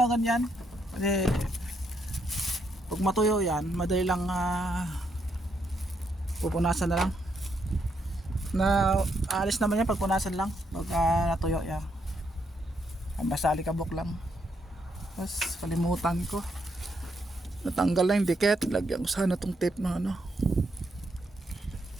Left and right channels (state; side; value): normal; both; correlation 0.77